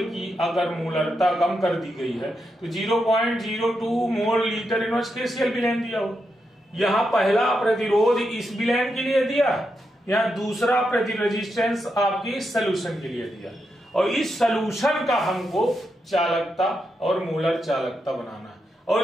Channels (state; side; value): normal; both; correlation 0.84